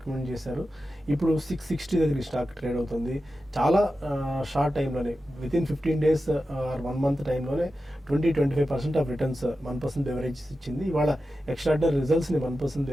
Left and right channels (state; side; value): normal; both; correlation 0.92